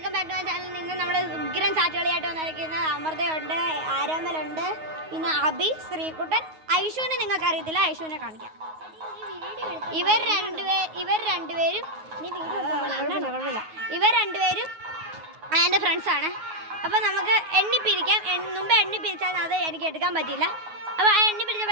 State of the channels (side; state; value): left; late; 9.4 ms